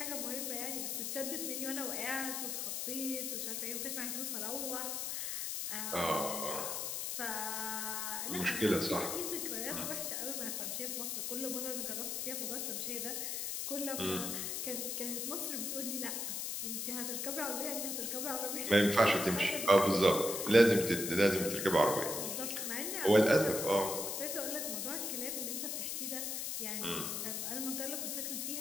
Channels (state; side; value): noise; left; hiss, 2 dB below the sound